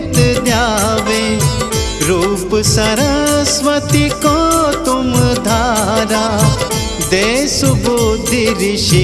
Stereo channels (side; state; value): both; identical; correlation 1.00